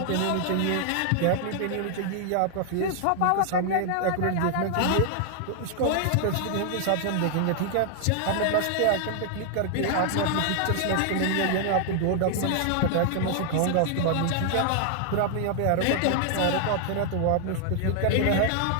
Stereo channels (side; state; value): both; different; correlation 0.00